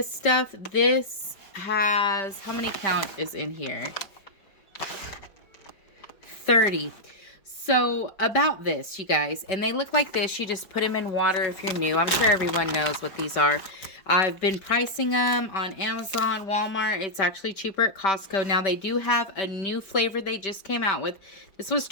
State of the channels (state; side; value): late; right; 5.1 ms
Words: stuff. This has, how many count is in here? 30. So about this, you guys, and they look like this. You just put them in water if you're new. I'm sure everyone knows what these are. I've been pricing them on Amazon, Walmart. It's actually cheaper at Costco. Now, they do have a new flavor they just came out with. This was